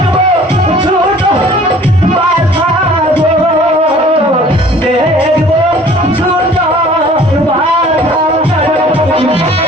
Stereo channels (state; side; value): normal; both; correlation 0.51